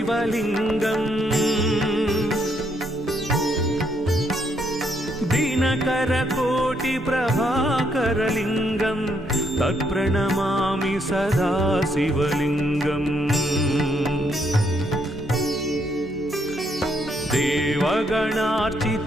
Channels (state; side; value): normal; both; correlation 0.73